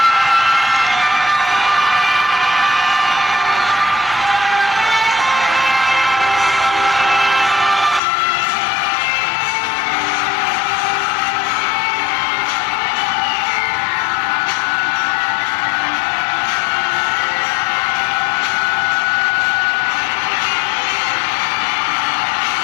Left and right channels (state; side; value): drops out; right; at 8.0 s